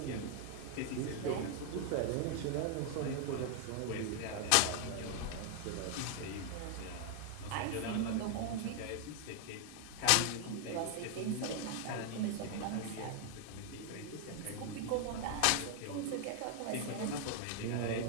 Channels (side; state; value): both; different; correlation 0.00